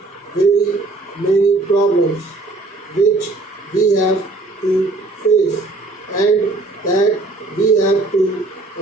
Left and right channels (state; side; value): quieter; left; 3.2 dB